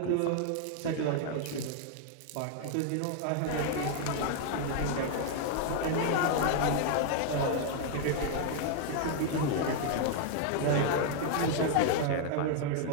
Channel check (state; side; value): different; both; correlation 0.00